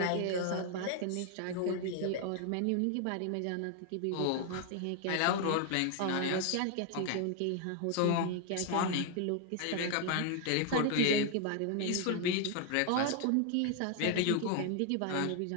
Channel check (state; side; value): different; both; correlation 0.00